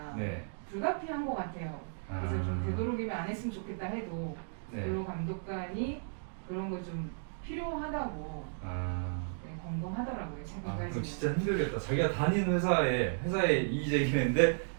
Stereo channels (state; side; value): silent; left; digital silence